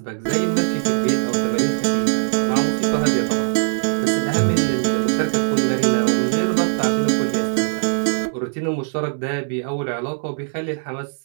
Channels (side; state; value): left; silent; 65 dB below the other